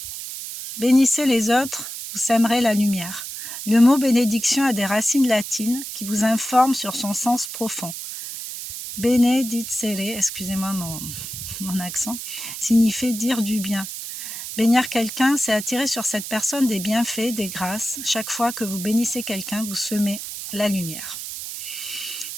Bénissez les autres, vous sèmerez la lumière. Le mot bénédiction a des racines latines qui vous informent sur son sens profond. Benedicere, excusez-moi mon accent, signifie dire du bien. Bénir quelqu'un, c'est attirer sur cette personne des bienfaits, des grâces. Chaque fois que vous bénissez quelqu'un, vous semez la lumière.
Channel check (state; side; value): noise; right; hiss, 8 dB below the sound